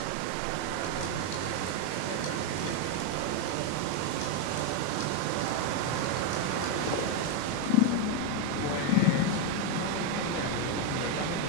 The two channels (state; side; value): different; both; correlation 0.02